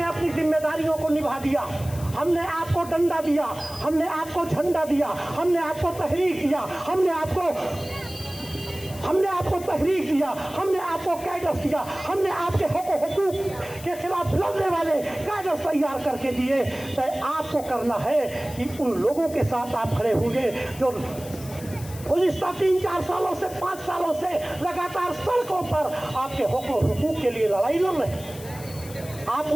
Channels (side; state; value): left; noise; hiss, 16 dB below the sound